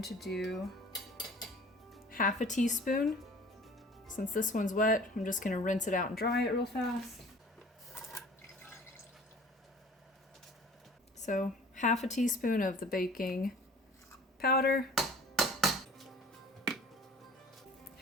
to do half a teaspoon. Since this one's wet, I'm just going to rinse it out and dry it real fast. So half a teaspoon of the baking powder,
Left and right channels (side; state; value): both; normal; correlation 0.47